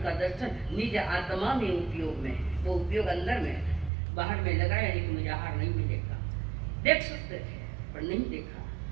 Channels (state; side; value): drops out; left; at 3.9 s